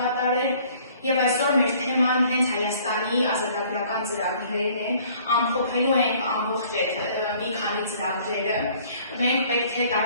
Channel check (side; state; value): both; inverted; correlation -0.56